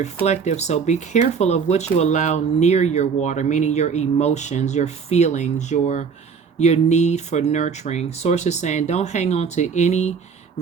so be careful of what you allow near your water, meaning your emotions, your feelings, your need for nurturing. Source is saying don't hang on to any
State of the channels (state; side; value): quieter; left; 6.0 dB